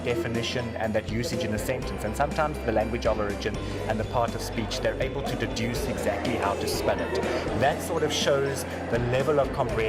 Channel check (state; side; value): identical; both; correlation 1.00